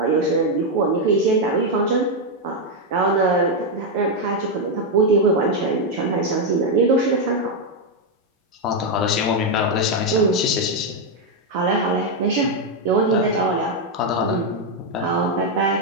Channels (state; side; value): normal; both; correlation 0.02